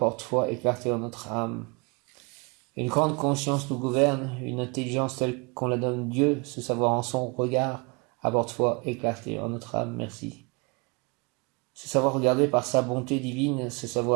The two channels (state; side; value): quieter; left; 30.6 dB